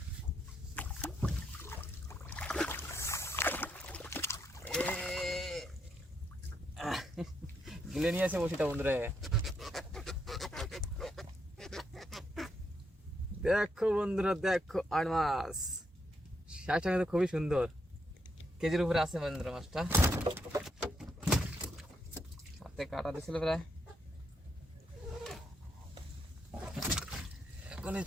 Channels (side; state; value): both; normal; correlation 0.78